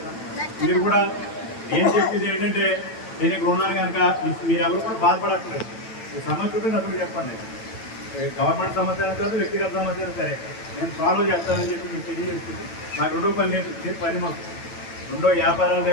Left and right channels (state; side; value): late; right; 9.0 ms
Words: మీరు కూడా ఏం చెప్పేది ఏంటంటే నేను ఇక్కడ ఉన్నాను కనుక మీరు ఎవరు కూడా బాధపడట్లేదు. ఈ సమస్య ఉంటే నాకు చెప్పండి. గవర్నమెంట్ సమస్య కాదు, వ్యక్తిగత సమస్య సరే నేను సాల్వ్ చేస్తానని చెప్పి మీకు తెలియజేస్తుంది. నాకు రెండో పని లేదు, ఇదే పని మాకు. రెండో వ్యాపారాలు